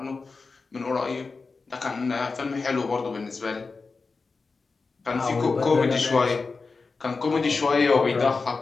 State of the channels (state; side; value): quieter; right; 4.3 dB